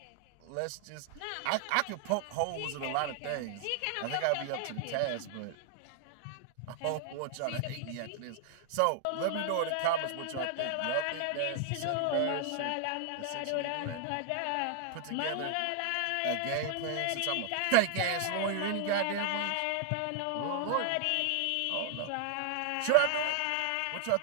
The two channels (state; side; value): different; both; correlation 0.00